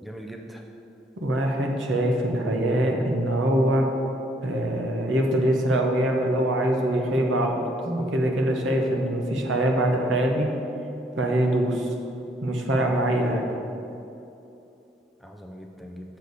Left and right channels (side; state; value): both; normal; correlation 0.66